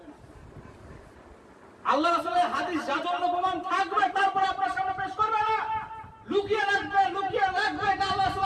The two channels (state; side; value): identical; both; correlation 1.00